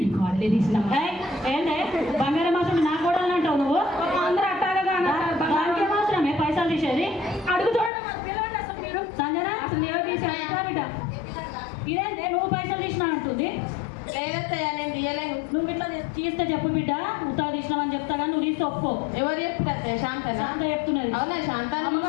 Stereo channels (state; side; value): drops out; right; at 7.9 s